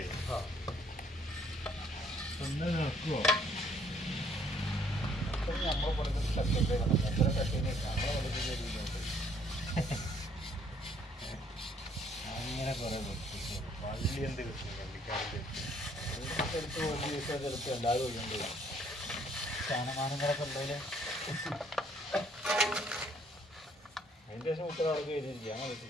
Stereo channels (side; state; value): both; normal; correlation 0.64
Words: ഒന്ന് നിൽക്കുവോ? നമ്മൾ പറഞ്ഞ കട്ടിട്ട് എത്ര കട്ടിനെ നമ്മളെ വളരെ അങ്ങനെ കുറെ പള്ളി എന്ത് കിട്ടും പള്ളിക്കാരുടെ ചിലപ്പോൾ എല്ലാവരും ഒഴിയുണ്ട്. സ്ഥാനമാനങ്ങളൊക്കെ ഉണ്ടല്ലേ. അതിൻ്റെ ശേഷം കുട്ടികൾ അവിടെ എഴുതിയിരിക്കുക. അങ്ങനെ